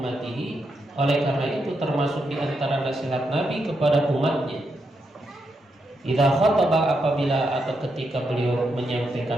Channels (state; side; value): normal; both; correlation 0.82